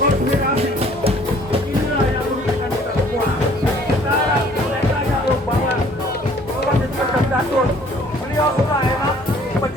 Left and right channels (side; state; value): both; normal; correlation 0.56